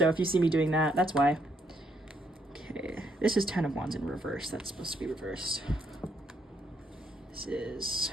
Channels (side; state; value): both; normal; correlation 0.74